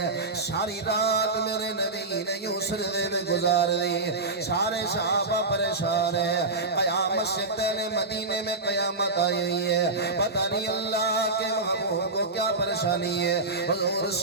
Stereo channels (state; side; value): quieter; left; 3.3 dB